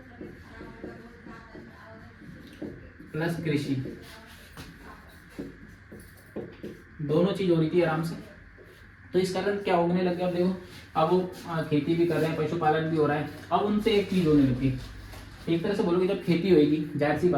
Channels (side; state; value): both; identical; correlation 1.00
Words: प्लस कृषि, दोनों चीज हो रही थी आराम से। तो इस कारण क्या होने लग गया, अब देखो अब वो खेती भी कर रहे हैं, पशुपालन भी हो रहा है। अब उनसे एक चीज होने लगी, एक तरह से बोलोगे जब खेती होगी, जाहिर सी